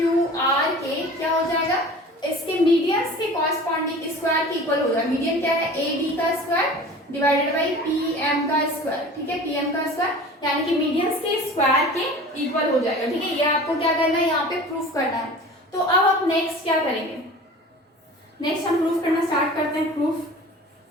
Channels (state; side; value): normal; both; correlation 0.40